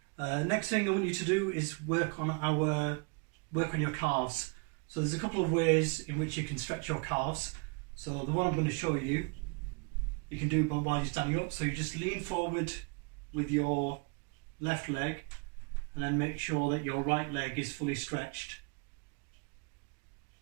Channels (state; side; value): quieter; left; 32.8 dB